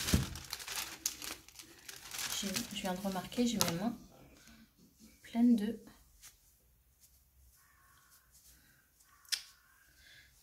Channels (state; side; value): identical; both; correlation 1.00